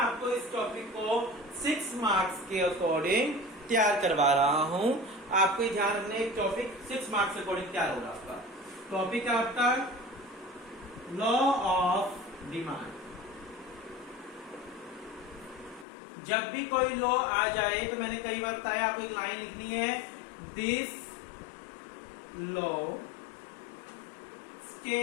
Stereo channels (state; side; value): drops out; right; at 15.9 s